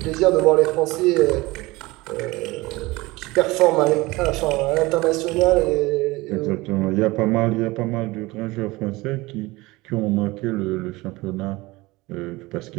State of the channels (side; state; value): left; quieter; 21.2 dB